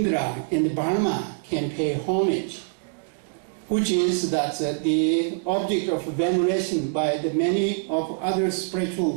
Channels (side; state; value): left; silent; digital silence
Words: and Brahma, can pay homage, which is that the object of veneration by the many of other